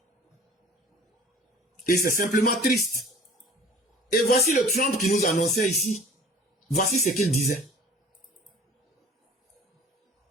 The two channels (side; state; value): both; normal; correlation 0.46